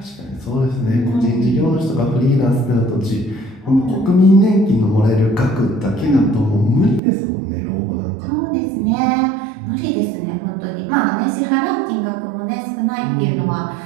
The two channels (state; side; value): drops out; left; at 7.0 s